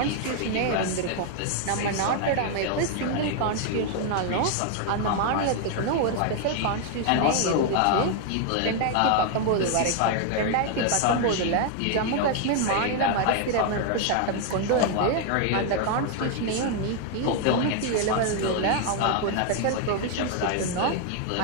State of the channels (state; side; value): different; both; correlation 0.00